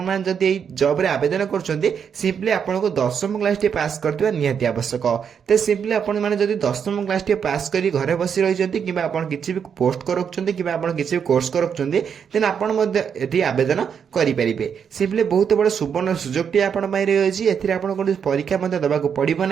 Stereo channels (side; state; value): left; quieter; 7.3 dB